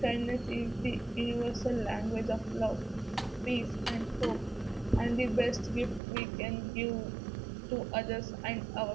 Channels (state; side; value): drops out; left; at 6.0 s